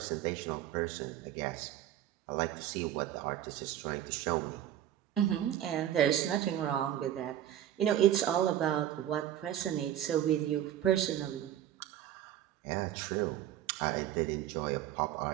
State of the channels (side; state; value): left; quieter; 11.6 dB